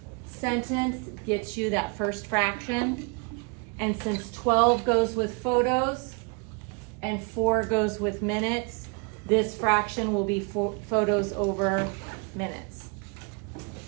sentence gets you that first fraction. And since 12 goes with photos and 4 goes with minutes, this fraction will be photos over minutes.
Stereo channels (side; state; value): left; quieter; 33.5 dB